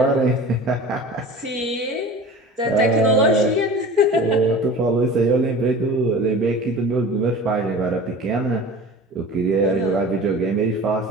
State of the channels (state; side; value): normal; both; correlation 0.38